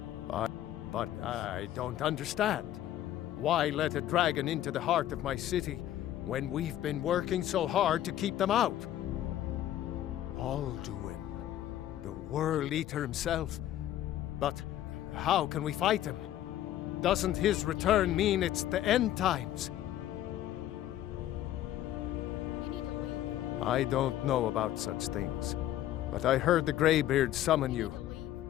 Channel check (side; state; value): right; quieter; 12.7 dB